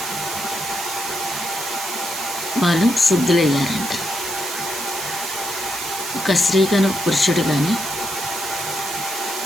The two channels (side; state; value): right; noise; hiss, 5 dB below the sound